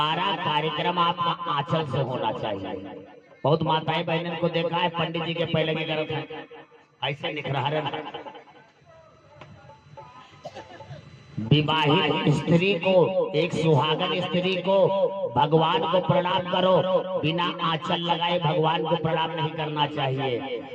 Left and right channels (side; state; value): both; identical; correlation 1.00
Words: कार्यक्रम आपका आंचल से होना चाहिए। बहुत माताएं बहनों को देखा है, पंडित जी के पहले की तरफ ऐसे निखरा। विवाहित स्त्री को, एक सुहागन स्त्री को भगवान को प्रणाम करो, बिना आंचल लगाए भगवान को प्रणाम नहीं करना